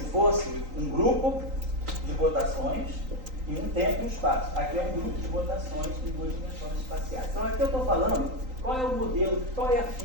fosse um grupo de rotações e um tempo e um espaço. Aqui é um grupo de rotações em duas dimensões espaciais. Então aqui eu estou falando qual é o modelo, qual é a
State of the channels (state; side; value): late; left; 3.9 ms